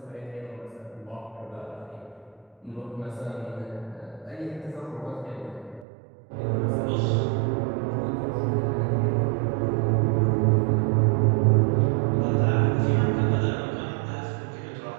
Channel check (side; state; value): left; drops out; at 5.9 s